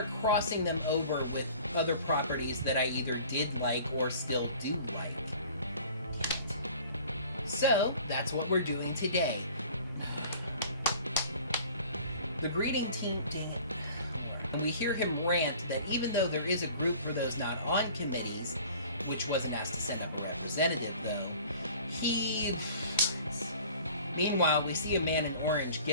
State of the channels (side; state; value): both; inverted; correlation -0.47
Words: crossing them over with other properties that I either did like or still do like. So, that's what we're doing today. The greeting team, and we hear him rant that even though there is a group for those not on committees, which wasn't asked to send up a representative though, Meanwhile, we see a man in orange